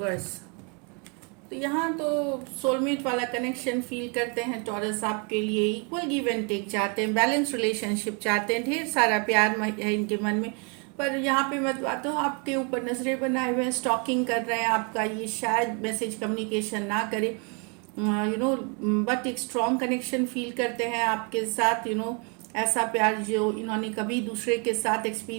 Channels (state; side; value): quieter; left; 34.8 dB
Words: तो यहाँ तो सोलमेट वाला कनेक्शन फील करते हैं टॉरस आपके लिए। इक्वल गिव एंड टेक चाहते हैं, बैलेंस रिलेशनशिप चाहते हैं, ढेर सारा प्यार है इनके मन में। पर यहाँ पे मैं बात हूँ, आपके ऊपर नजरें बनाए हुए हैं, स्टॉकिंग कर रहे हैं आपका। ये शायद मैसेज कम्युनिकेशन ना करे, बट एक स्ट्रॉन्ग कनेक्शन फील करते हैं आपके साथ। ऐसा प्यार जो इन्होंने कभी दूसरे के साथ